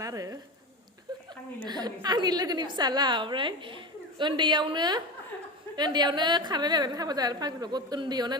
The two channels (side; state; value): both; normal; correlation 0.24